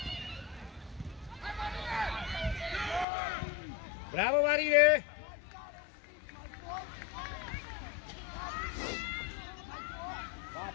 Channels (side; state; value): right; drops out; at 3.1 s